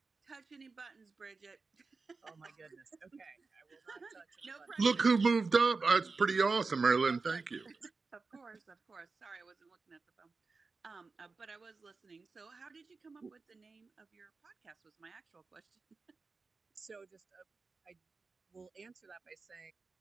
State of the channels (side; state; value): left; quieter; 4.2 dB